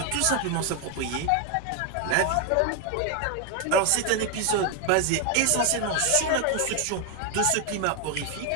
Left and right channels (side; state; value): both; different; correlation 0.01